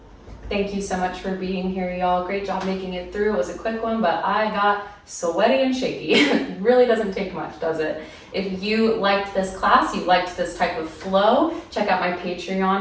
Thank you so much for being here, y'all. Great job making it through. It was a quick one, but I got sweaty and shaky. It really doesn't take much, does it? If you liked this class, you liked this type of flow, check out my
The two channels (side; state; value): both; identical; correlation 1.00